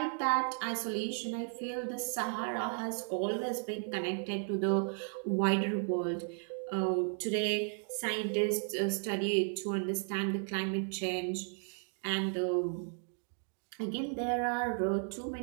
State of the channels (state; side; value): silent; left; 55 dB below the other